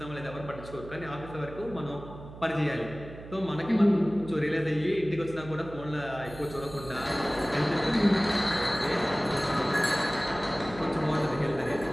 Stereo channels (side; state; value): right; noise; hum, 15 dB below the sound